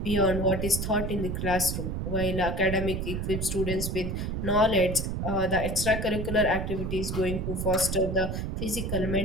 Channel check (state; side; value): noise; right; rumble, 3 dB below the sound